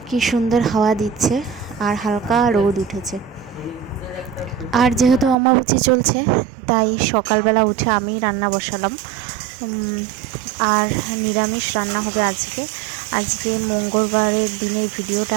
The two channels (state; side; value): drops out; left; at 5.4 s